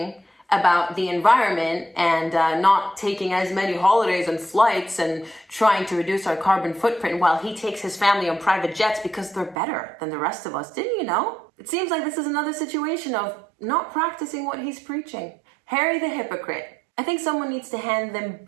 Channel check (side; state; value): left; drops out; at 9.6 s